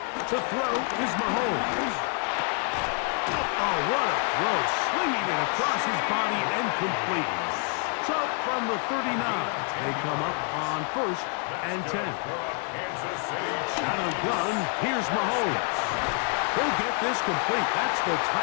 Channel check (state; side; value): quieter; right; 39.8 dB